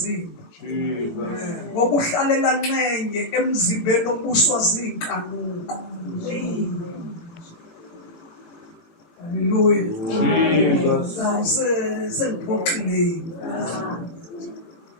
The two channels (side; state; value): right; late; 18 ms